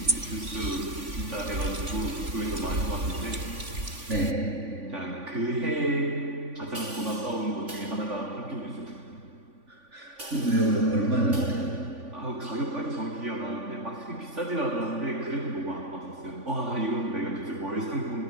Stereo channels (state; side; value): late; left; 3.5 ms